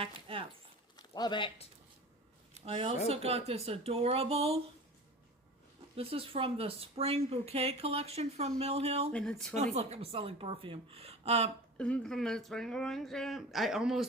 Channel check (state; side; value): normal; both; correlation 0.36